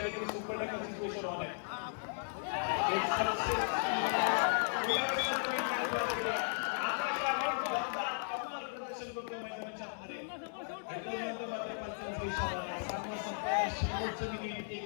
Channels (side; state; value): right; silent; digital silence